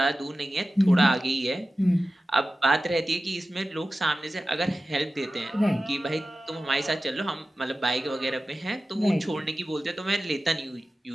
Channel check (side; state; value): both; normal; correlation 0.94